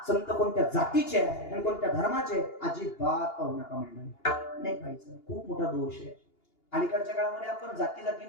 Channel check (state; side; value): late; right; 2.8 ms